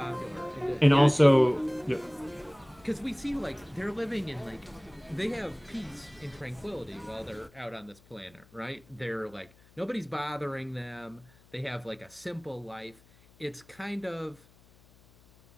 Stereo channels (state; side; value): noise; left; hum, 27 dB below the sound